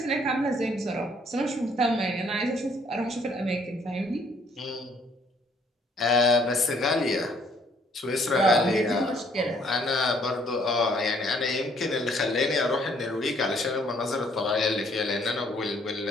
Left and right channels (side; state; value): both; normal; correlation 0.64